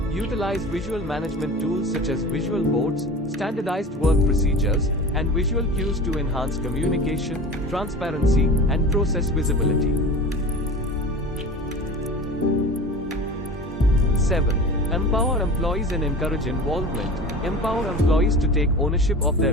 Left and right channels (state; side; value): normal; both; correlation 0.36